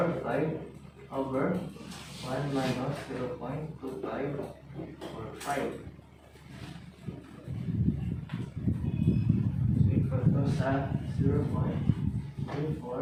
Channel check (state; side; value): identical; both; correlation 1.00